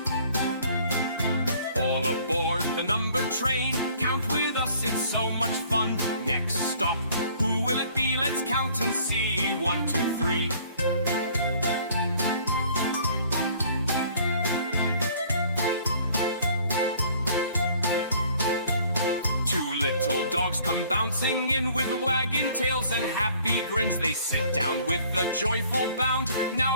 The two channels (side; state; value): both; inverted; correlation -0.56